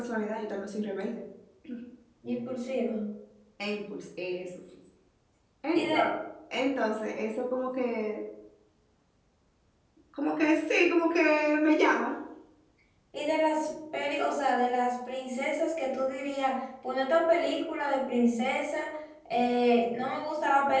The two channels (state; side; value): identical; both; correlation 1.00